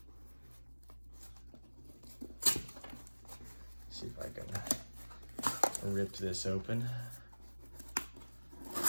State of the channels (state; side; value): inverted; both; correlation -1.00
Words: See if I can rip this open.